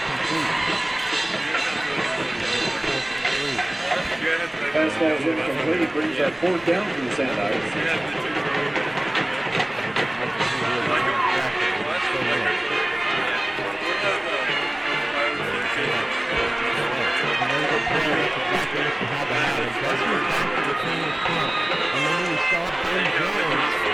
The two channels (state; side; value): noise; right; rumble, 26 dB below the sound